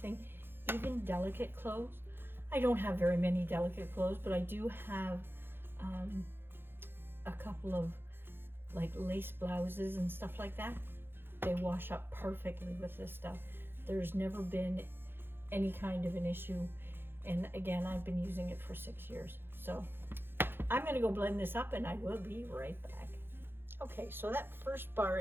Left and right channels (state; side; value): late; left; 0.10 ms